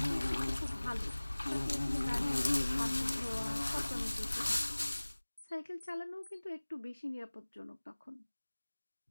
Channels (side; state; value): both; inverted; correlation -1.00